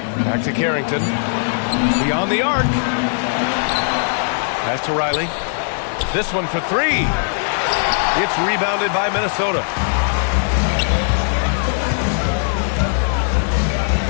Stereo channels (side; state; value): right; silent; 67 dB below the other